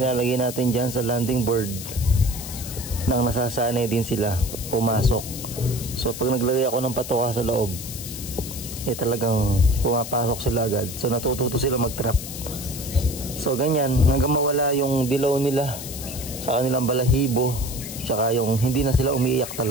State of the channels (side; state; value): left; noise; hiss, 10 dB below the sound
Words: natin dyan sa landing board nang nasasanay din sila pumasok. So pag naglagay ako ng patoka sa loob, talagang pumapasok sila agad. So natututo sila mag-trap. So ganyan, hanggang mawala yung dilaw nila sa kanilang balahibo, tsaka yung hindi na sila umiiyak